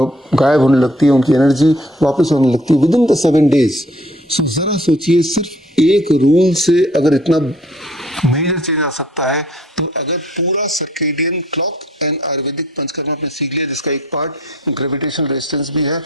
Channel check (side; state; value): both; normal; correlation 0.58